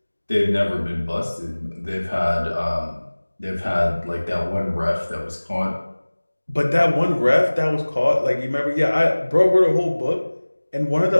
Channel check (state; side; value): inverted; both; correlation -1.00